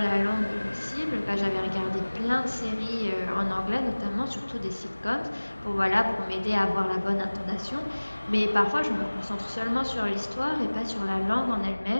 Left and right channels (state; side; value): inverted; both; correlation -1.00